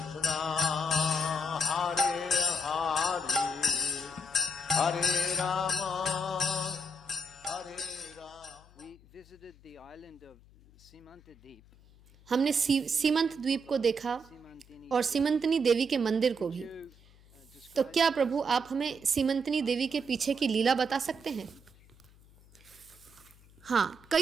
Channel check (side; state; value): left; noise; hum, 26 dB below the sound